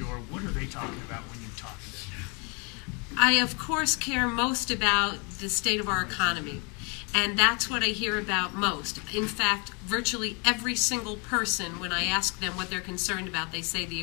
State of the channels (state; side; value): quieter; right; 32.7 dB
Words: What are they talking about when you talk to them? I, of course, care most about the state of our economy, and that's what I hear about most. In fact, virtually every single person, when I ask them what they're concerned about, they say the